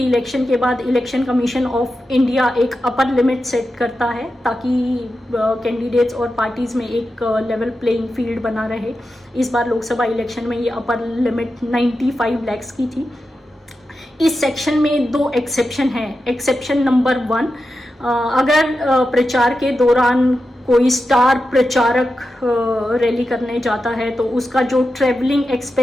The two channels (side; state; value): both; normal; correlation 0.90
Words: इलेक्शन के बाद इलेक्शन कमीशन ऑफ इंडिया एक अपर लिमिट सेट करता है ताकि कैंडिडेट्स और पार्टीज़ में एक लेवल प्लेइंग फील्ड बना रहे। इस बार लोकसभा इलेक्शन में ये अपर लिमिट 95 लाख की थी। इस सेक्शन में 2 एक्सेप्शन हैं। एक्सेप्शन नंबर 1, अगर प्रचार के दौरान कोई स्टार प्रचारक रैली करने जाता है तो उसका जो ट्रैवलिंग